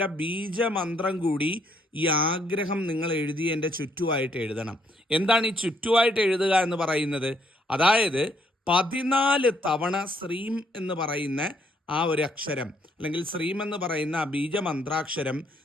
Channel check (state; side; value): normal; both; correlation 0.70